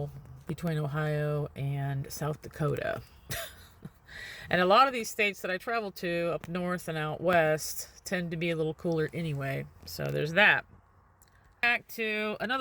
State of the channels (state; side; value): identical; both; correlation 1.00